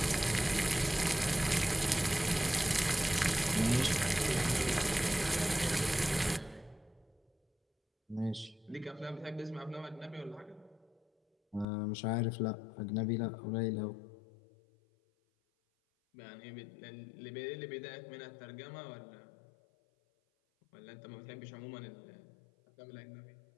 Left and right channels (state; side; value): drops out; right; at 11.7 s